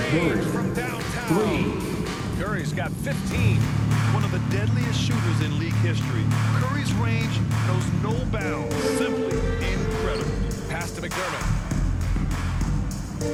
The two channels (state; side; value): identical; both; correlation 1.00